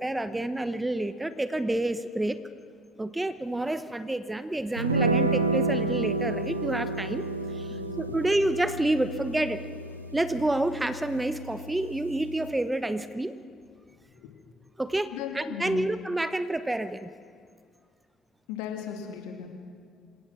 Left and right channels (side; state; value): both; normal; correlation 0.56